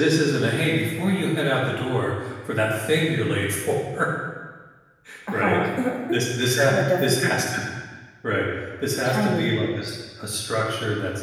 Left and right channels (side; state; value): both; identical; correlation 1.00